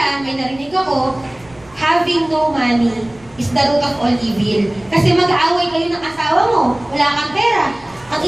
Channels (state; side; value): noise; right; rumble, 27 dB below the sound